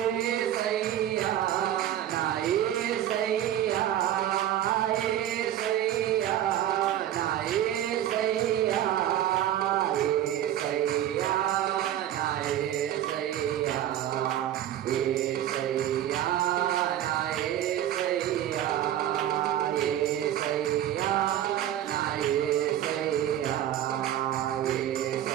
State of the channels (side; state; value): left; quieter; 11.7 dB